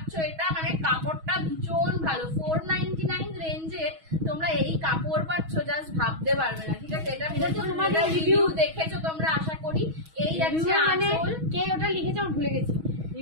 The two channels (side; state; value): left; late; 6.3 ms